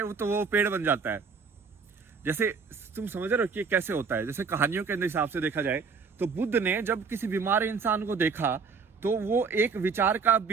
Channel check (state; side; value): quieter; left; 5.3 dB